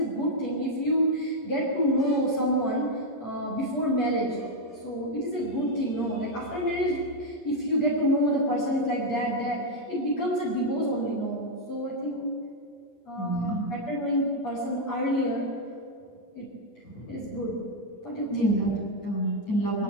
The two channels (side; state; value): right; late; 11 ms